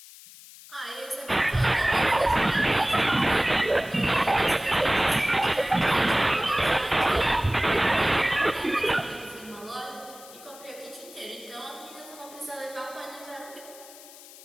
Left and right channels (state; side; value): noise; left; hiss, 19 dB below the sound